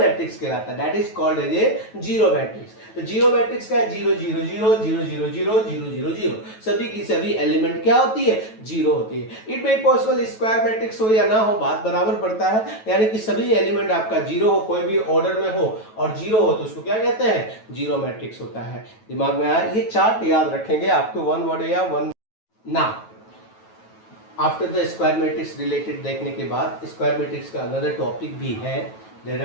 कहलाता है, that is called as a zero matrix. तो जीरो मैट्रिक्स का 0 0 0 0 0 0 0 0 0, सभी की सभी एलिमेंट क्या होती है, जीरो होती है। It may possible square matrix हो या ना हो, बात बराबर पड़ता है, यानी कि सभी एलिमेंट आपका जीरो हो, कोई भी ऑर्डर में हो और जीरो हो तो उसको क्या कहते हैं, जीरो मैट्रिक्स होता है। दिमाग में आया, ये चार्ट याद रखेंगे आपको, 1 वर्ड या 1 ना। After the square matrix related देखने के बाद स्क्वायर मैट्रिक्स का अनदर टॉपिक भी है, there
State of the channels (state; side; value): late; right; 9.2 ms